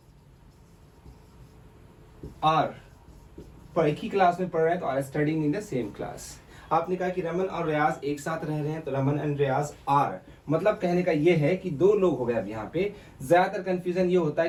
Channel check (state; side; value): identical; both; correlation 1.00